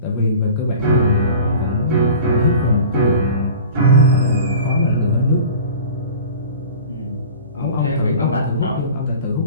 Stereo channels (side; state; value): both; inverted; correlation -0.41